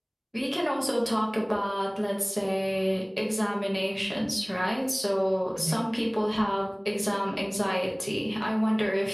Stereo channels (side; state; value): both; identical; correlation 1.00